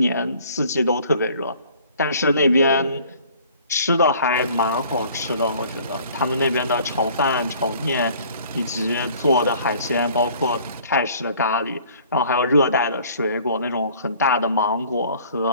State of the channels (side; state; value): both; inverted; correlation -0.53